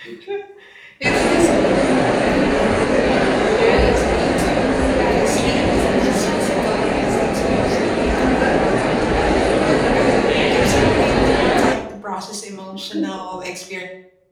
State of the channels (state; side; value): identical; both; correlation 1.00